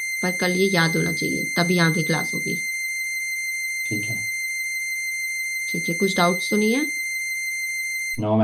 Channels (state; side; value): identical; both; correlation 1.00